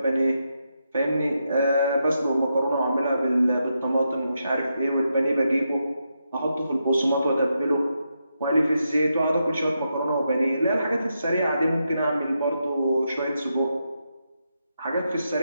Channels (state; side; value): inverted; both; correlation -0.84